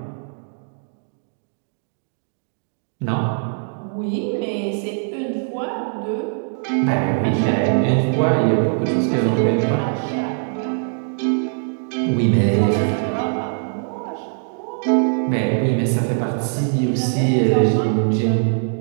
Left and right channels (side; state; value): left; silent; digital silence